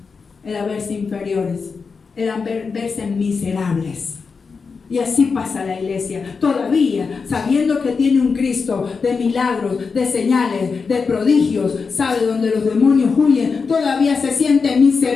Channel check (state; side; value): quieter; right; 5.1 dB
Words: era verse inferiores, era verse miserables. Y así pasa la iglesia, todavía sabiendo que tiene un Cristo de milagros, de señales, de prodigios, sabe donde los demonios huyen, todavía se siente